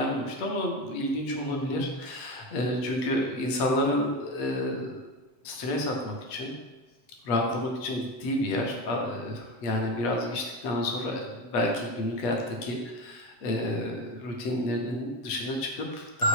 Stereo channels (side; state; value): right; late; 7.8 ms